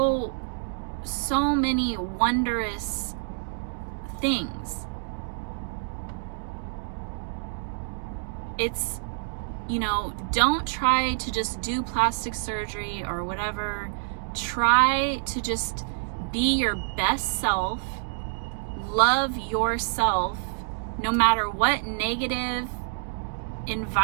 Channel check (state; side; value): silent; left; digital silence